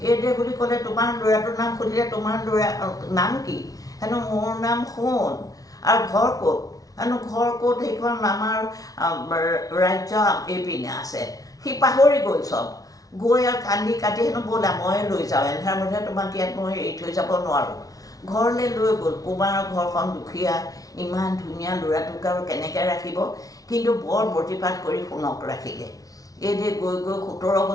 এইদৰে বুলি ক'লে তোমাৰ ল'ৰাটোৰ নাম সুধিলে তোমাৰ ল'ৰা নাম কি হেনো মোৰ নাম সোণ আৰু ঘৰ ক'ত হেনো ঘৰ ক'ত সেইখন আমাৰ ৰাজ্য এইপিনে আছে সি পাহৰি গ'ল চব গৈ আৰু কান্দি কাটি হেনো ব'লা মই লৈ যাওঁ এন্ধাৰ মধ্যে তোমাক ইয়াত মই এৰি থৈ যাব নোৱাৰোঁ ঘৰলৈ লৈ গ'ল কুমাৰৰ ঘৰখন দুখীয়া ইমান ধুনীয়া ল'ৰাটোক আৰু কেনেকৈ ৰাখিব কিন্তু বৰ প্ৰতিপাত কৰি সোণক ৰাখিলে এইদৰে গৈ গৈ 17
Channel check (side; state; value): right; late; 0.18 ms